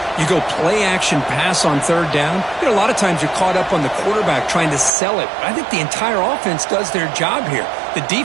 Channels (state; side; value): drops out; left; at 4.9 s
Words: You go play action pass on third down. You know, a lot of times you're caught up on the quarterback trying to sell it. I think the entire offense does their job here. The